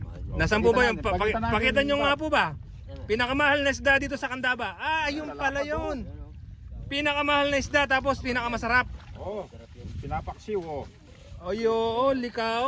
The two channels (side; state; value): both; identical; correlation 1.00